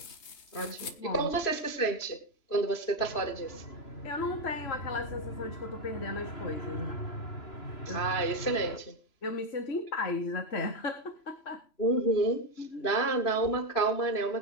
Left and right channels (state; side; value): late; right; 3.0 ms